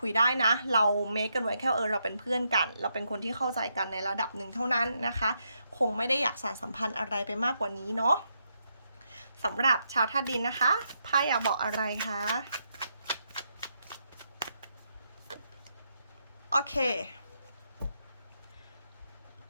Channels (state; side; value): inverted; both; correlation -0.80